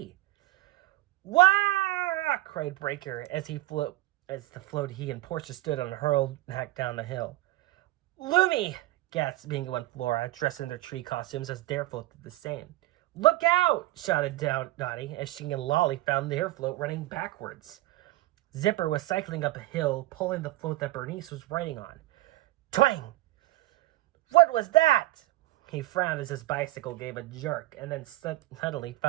"Wah!" cried Breaker as the float he and Portia stood on hurled back down the hill. "Loomy!" gasped Bingo and Flora, dressed in their tree costumes as their float did the same. "Look out!" shouted Dottie as she and Lolly found their float running backwards. Zipper was cycling up a hill, pulling the float that Bernice was riding on. Twang! "What was that?" He frowned as his bicycle gave a jerk and then suddenly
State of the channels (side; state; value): left; quieter; 18.1 dB